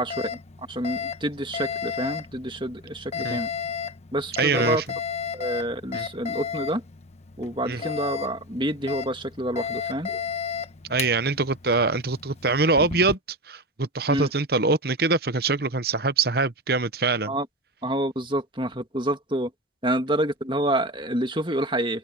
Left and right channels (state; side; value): normal; both; correlation 0.23